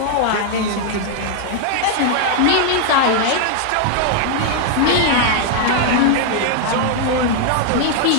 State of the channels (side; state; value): both; different; correlation 0.00